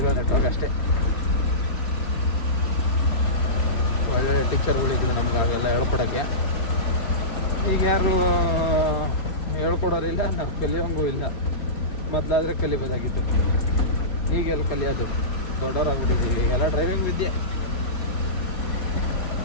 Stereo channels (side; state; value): right; late; 3.6 ms